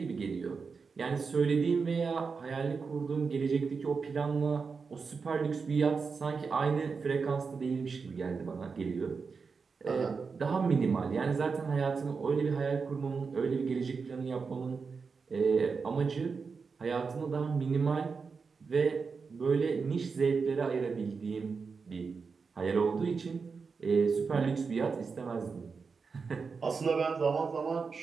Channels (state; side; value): quieter; left; 5.1 dB